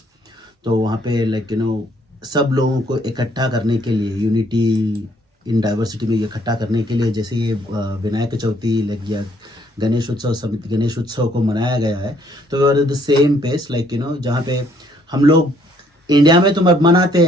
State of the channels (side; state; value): both; normal; correlation 0.66